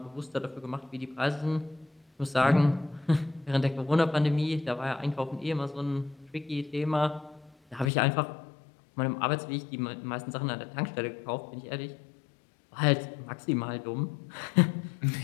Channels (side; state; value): right; drops out; at 7.9 s